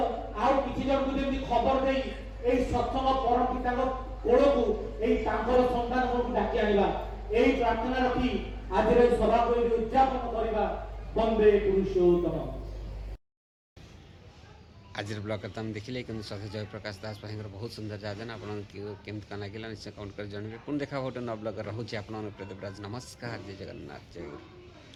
किसी जन को जमी खबर दे सत्संग परम पिता कोड़ को संतान को डाकी आनिबा यही प्रार्थना रखी आज सभा को उद्यापन करवा वंदे पुरुषोत्तम। आज ब्लॉग करता हम देखिले कि सत्य जयप्रकाश दास भाई बहुत सुंदर जाजन आप केमती कन लगे निश्चय कमेंट कर जानवे पुणी देखा गोटे न ब्लॉग रोचे आप देवराज नमस्कार जय जगन्नाथ जय गुरु।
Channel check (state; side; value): identical; both; correlation 1.00